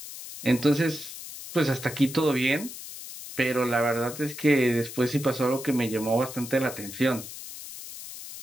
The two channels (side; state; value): left; noise; hiss, 12 dB below the sound